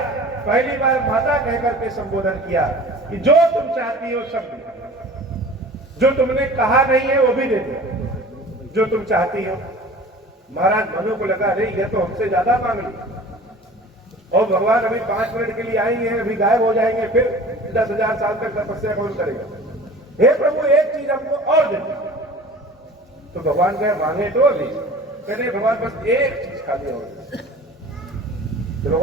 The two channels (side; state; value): both; normal; correlation 0.42